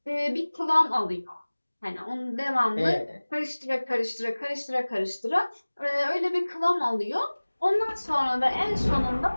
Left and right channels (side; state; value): both; inverted; correlation -1.00